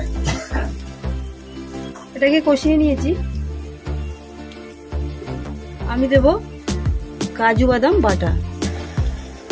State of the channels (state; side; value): identical; both; correlation 1.00